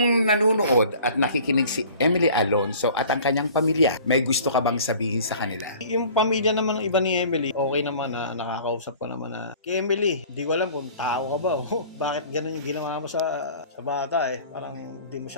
nanunood at nakikinig si Emily Alonso at ang kanyang pamilya, may gusto ka bang sabihin sa kanila? Yung pamilya naman ng iba ni Emily, okay naman na nakakausap ko naman na, kay Emily, hindi ko alam kung tao ka ba o bakit ganun yung ginawa mo sa bata Parang hindi mo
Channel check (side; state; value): both; inverted; correlation -0.47